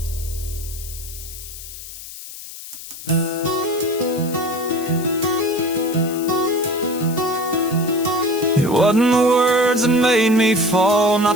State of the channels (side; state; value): left; noise; hiss, 13 dB below the sound